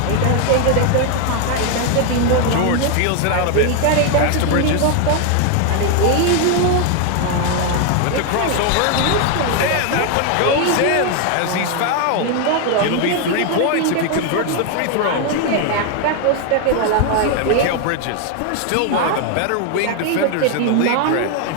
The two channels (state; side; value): different; both; correlation 0.01